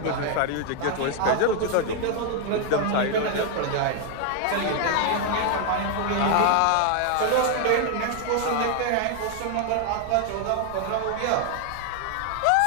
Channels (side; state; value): both; different; correlation 0.01